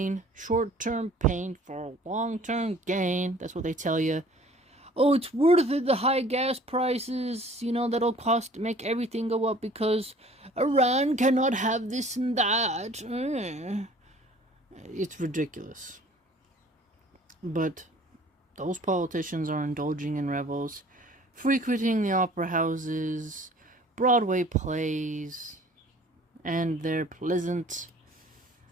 Short-term pain for long-term gain. That's what they tell you. Oh, it's worth it, the high gas prices, that'll make everything go up because Iran cannot have this and that. It's ridiculous. But those politicians are indulging in revels, frequenting the opera houses, Broadway plays, and their pleasant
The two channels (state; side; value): normal; both; correlation 0.51